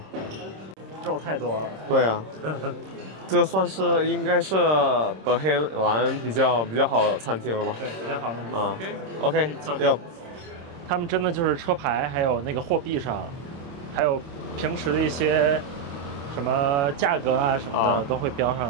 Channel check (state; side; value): late; left; 26 ms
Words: 肉太多了。对啊，这算是应该是德黑兰比较好的餐厅了吧？对，比较好的。啊 ，OK， 要。他们真的就是车牌，还有那个货币上，还有平时的一些什么价格啊什么的，都会标